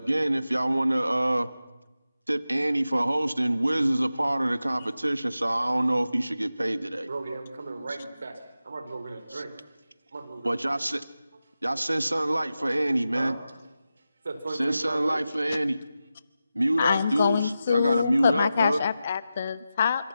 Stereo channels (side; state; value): both; inverted; correlation -0.92